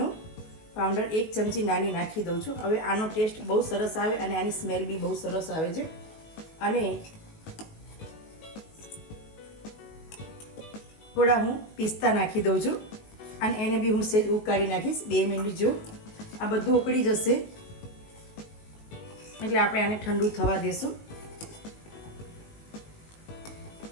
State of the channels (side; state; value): right; late; 19 ms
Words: પાવડર 1 ચમચી નાની નાખી દઉં છું. હવે આનો ટેસ્ટ બહુ સરસ આવે અને આની સ્મેલ બી બહુ સરસ આવે છે. અને થોડા હું પિસ્તા નાખી દઉં છું અને એને બી હું સેજ ઉકાળી નાખીશ 2 મિનિટ જો. આ બધું ઉકળી જશે એટલે આપણે આને ઠંડુ થવા દેશું.